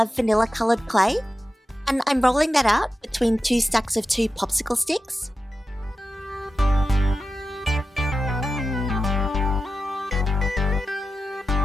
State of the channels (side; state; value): both; normal; correlation 0.92